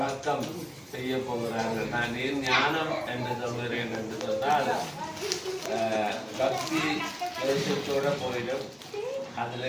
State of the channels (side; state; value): both; identical; correlation 1.00